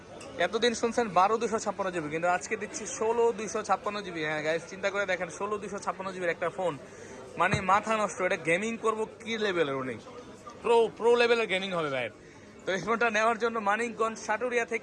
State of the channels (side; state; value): both; identical; correlation 1.00